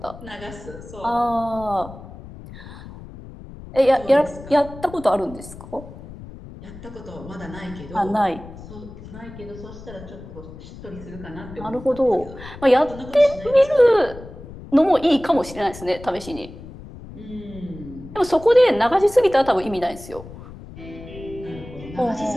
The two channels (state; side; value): noise; left; rumble, 15 dB below the sound